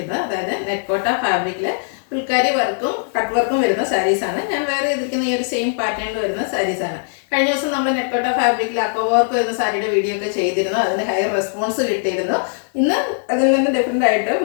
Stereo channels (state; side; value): silent; right; digital silence